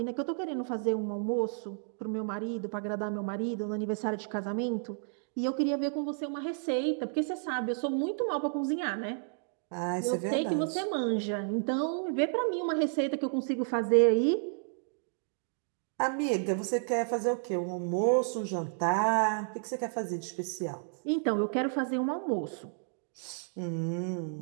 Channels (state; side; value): silent; left; digital silence